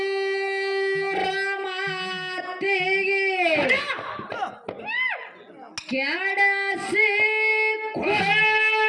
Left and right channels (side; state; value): both; identical; correlation 1.00